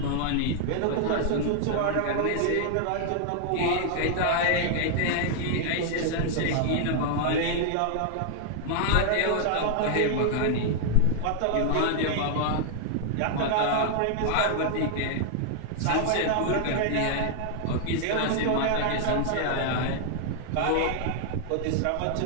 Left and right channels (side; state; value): both; different; correlation 0.00